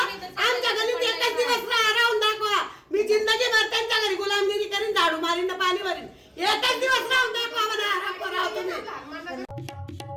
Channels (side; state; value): both; identical; correlation 1.00